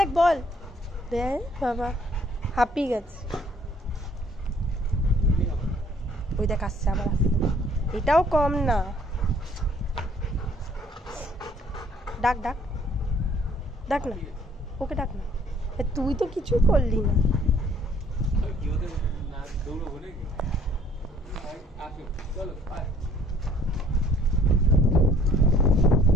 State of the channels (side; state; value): both; normal; correlation 0.60